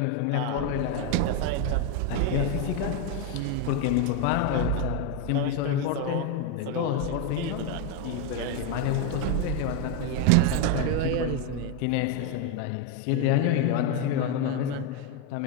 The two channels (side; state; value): both; different; correlation 0.02